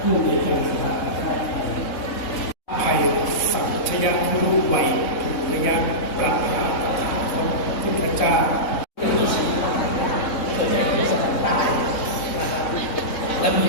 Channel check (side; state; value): right; late; 3.6 ms